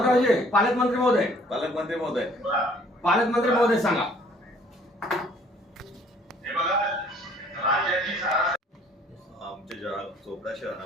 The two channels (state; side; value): normal; both; correlation 0.58